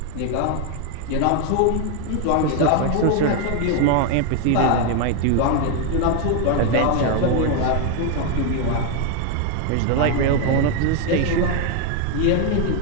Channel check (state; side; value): different; both; correlation 0.01